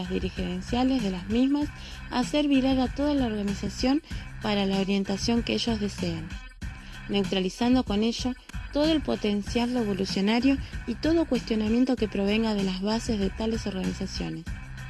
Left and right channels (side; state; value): both; identical; correlation 1.00